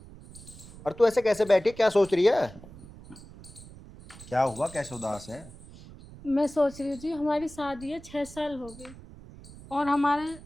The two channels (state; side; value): noise; right; rumble, 18 dB below the sound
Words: और तू ऐसे कैसे बैठी, क्या सोच रही है? क्या हुआ, कैसे उदास है? मैं सोच रही थी, हमारी शादी है 6 साल हो गए और हमारे